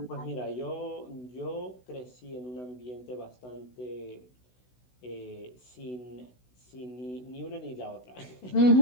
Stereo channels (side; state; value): right; late; 16 ms